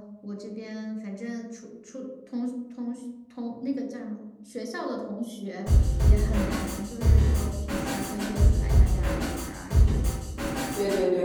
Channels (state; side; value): identical; both; correlation 1.00